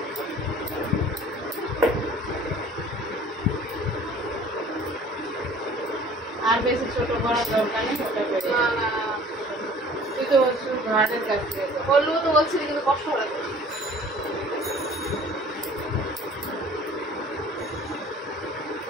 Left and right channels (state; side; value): normal; both; correlation 0.49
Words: আর বেশি ছোট করার দরকার নেই, ওটা করে। না না তুই তো বলছিস ঘাটের কাছ থেকে বললেও তো বলছিলি, কিন্তু কষ্ট করে।